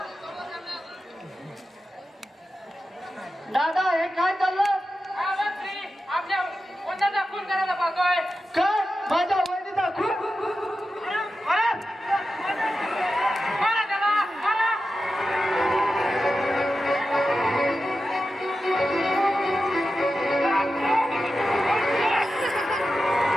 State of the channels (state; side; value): normal; both; correlation 0.92